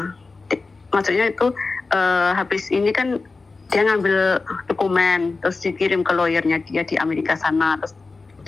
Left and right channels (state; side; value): quieter; right; 3.9 dB